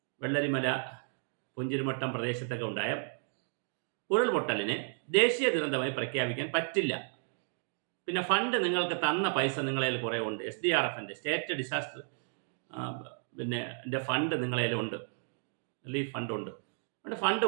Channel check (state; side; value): silent; left; 56 dB below the other